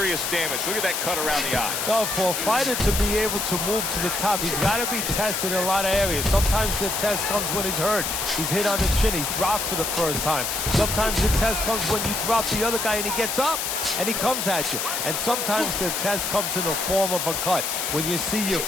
damage? Look at that cut around the eye. No, for a fighter to be able to move to the top, he's got to be tested in a lot of areas. Sometimes the test comes when he's hurt. He's hit on the chin. He's dropped for the first time. Sometimes the test comes when you drop the other guy and he gets up and he comes at you. And sometimes the test comes in the form of a cut. When you see your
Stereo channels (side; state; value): left; noise; hiss, 1 dB below the sound